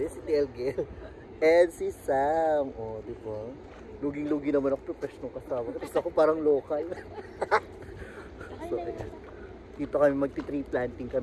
si TL Gil. And si Sam. O, di ba? Luging-lugi naman ako professional kasama. Tapos ako parang local. So, ayan. Dito kami magti-tree planting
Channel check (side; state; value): both; identical; correlation 1.00